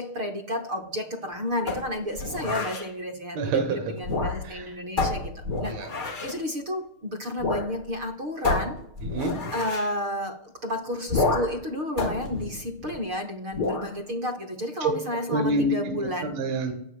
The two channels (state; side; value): late; left; 6.6 ms